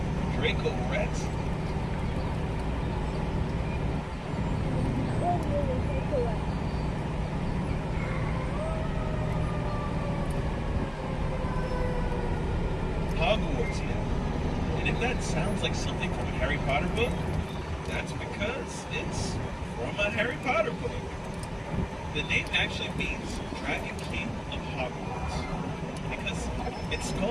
Draco Rex. Hogwarts, yeah. And if that sounds like something from a Harry Potter book, that's because it's from a Harry Potter book. The name actually means Dragon King of Hogwarts, because its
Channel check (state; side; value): identical; both; correlation 1.00